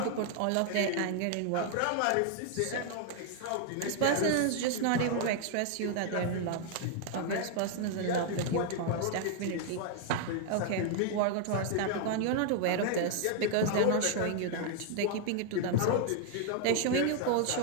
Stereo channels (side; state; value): both; different; correlation 0.00